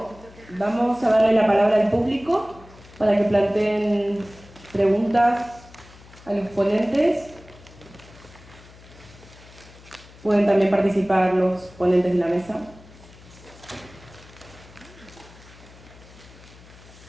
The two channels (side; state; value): left; noise; hum, 22 dB below the sound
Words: vamos a darle la palabra al público para que planteen preguntas a los ponentes. Pueden también participar los ponentes de la mesa.